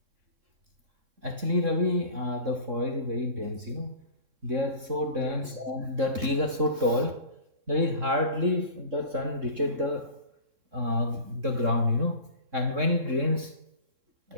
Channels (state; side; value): late; left; 3.6 ms